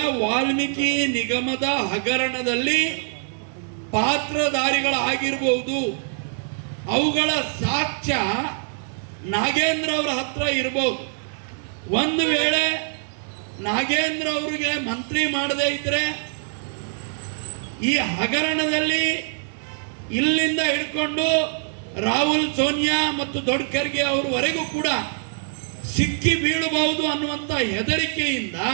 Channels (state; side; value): silent; left; digital silence